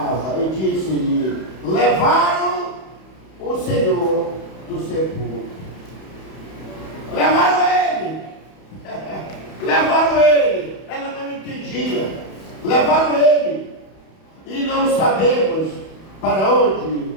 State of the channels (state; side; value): late; right; 31 ms